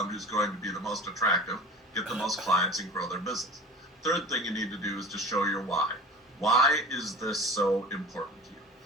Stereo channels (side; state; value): both; normal; correlation 0.38